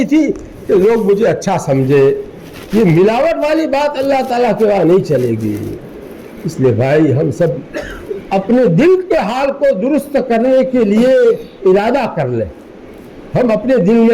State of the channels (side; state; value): both; identical; correlation 1.00